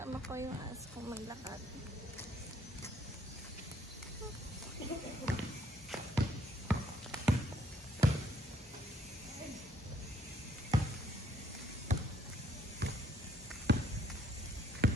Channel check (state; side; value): normal; both; correlation 0.66